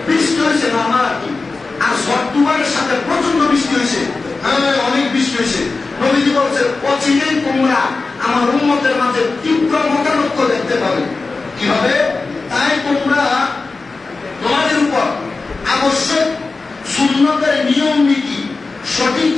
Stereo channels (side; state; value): right; quieter; 3.9 dB